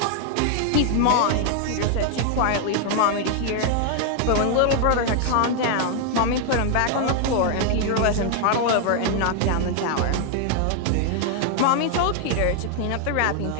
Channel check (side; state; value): both; different; correlation 0.00